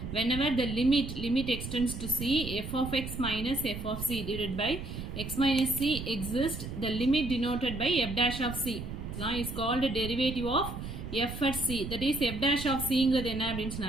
whenever the limit extends to c, f of x minus f of c divided by x minus c exists, the limit denoted by f dash of c is called a derivative of f at c. That is f dash of c ங்கிறது என்ன அப்படினு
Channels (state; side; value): noise; right; rumble, 8 dB below the sound